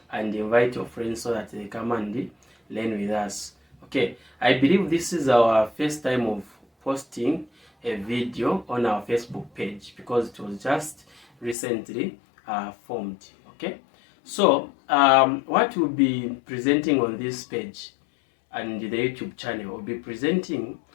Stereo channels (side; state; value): right; drops out; at 11.6 s